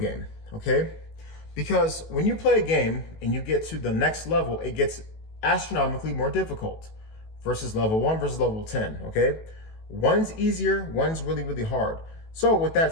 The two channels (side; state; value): right; late; 18 ms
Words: okay? Because when you play a game and you get to the next level, it gets astronomically more difficult versus level 1 versus level 10, okay? One's easier, one's really, really hard. So with that